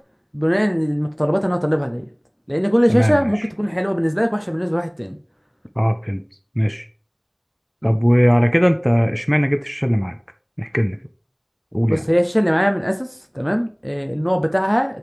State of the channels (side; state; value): both; identical; correlation 1.00